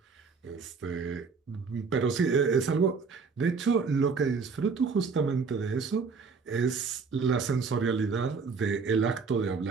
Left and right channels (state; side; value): quieter; left; 5.0 dB